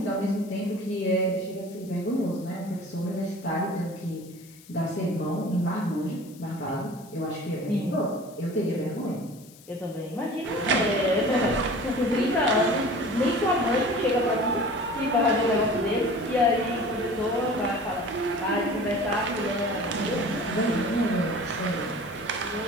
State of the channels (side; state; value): left; noise; hiss, 23 dB below the sound